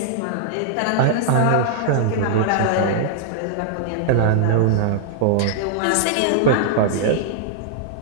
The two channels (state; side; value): different; both; correlation -0.01